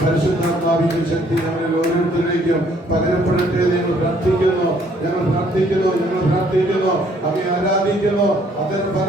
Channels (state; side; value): normal; both; correlation 0.63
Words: പരിശുദ്ധാത്മാവിന്റെ ശക്തി ഞങ്ങളിൽ ഓരോരുത്തരിലേക്കും പകരപ്പെടട്ടെ. നിങ്ങൾ പ്രാർത്ഥിക്കുന്നു, ഞങ്ങൾ പ്രാർത്ഥിക്കുന്നു, ഞങ്ങൾ പ്രാർത്ഥിക്കുന്നു, അങ്ങയെ ആരാധിക്കുന്നു. അതിന്